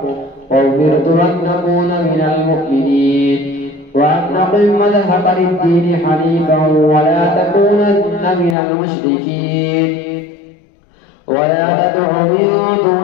وأمرت أن أكون من المؤمنين وأن أقم مذهب للدين حنيفا ولا تكونن من المشركين ولا تدع من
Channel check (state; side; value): drops out; right; at 8.6 s